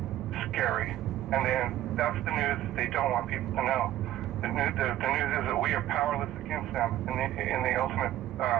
scary. And then that's the news that they don't want people to know. The news is that we are powerless against them in the ultimate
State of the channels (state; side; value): quieter; left; 13.4 dB